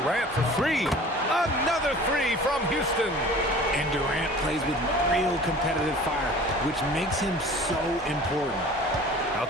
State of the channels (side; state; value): both; normal; correlation 0.44